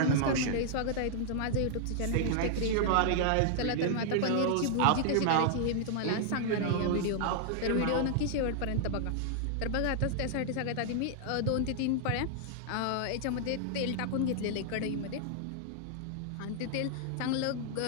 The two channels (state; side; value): different; both; correlation -0.01